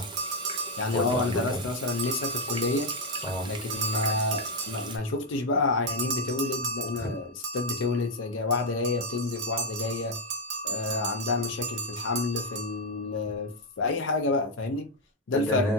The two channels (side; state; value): both; normal; correlation 0.03